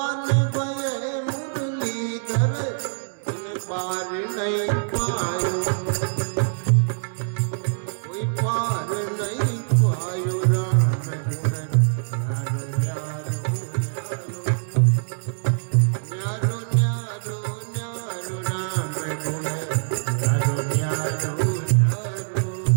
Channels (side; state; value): left; silent; digital silence